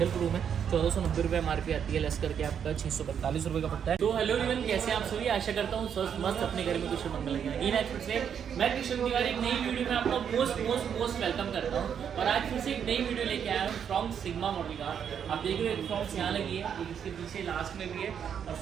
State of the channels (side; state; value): left; quieter; 8.1 dB